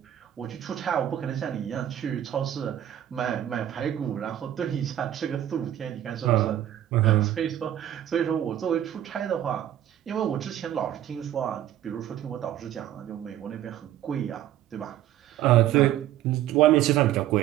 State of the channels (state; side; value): quieter; left; 11.9 dB